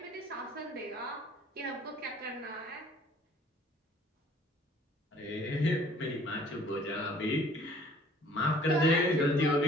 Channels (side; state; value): both; normal; correlation 0.55